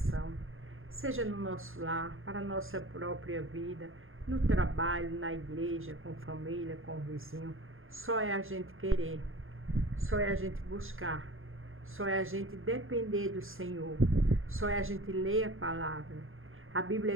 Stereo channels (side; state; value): left; late; 0.60 ms